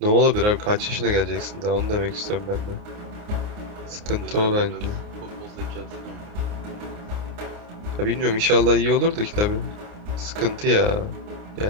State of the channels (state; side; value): late; left; 29 ms